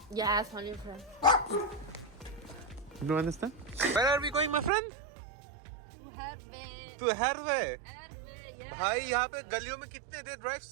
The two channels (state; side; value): drops out; left; at 4.7 s